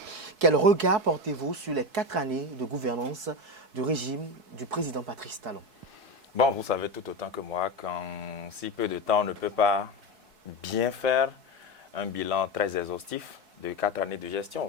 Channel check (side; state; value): left; late; 4.6 ms